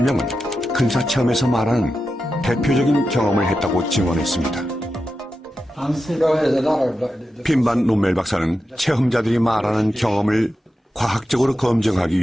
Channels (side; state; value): both; normal; correlation 0.90